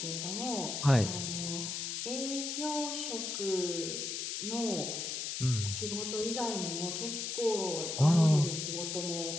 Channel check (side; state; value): left; noise; hiss, 3 dB below the sound